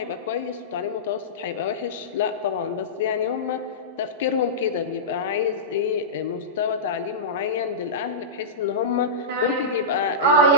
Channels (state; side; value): normal; both; correlation -0.16